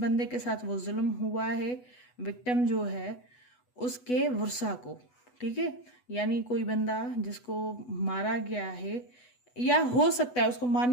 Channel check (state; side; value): late; right; 8.1 ms